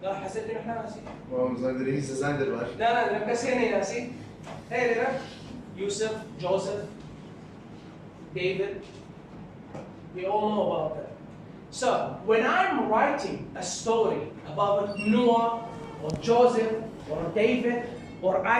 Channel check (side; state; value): both; identical; correlation 1.00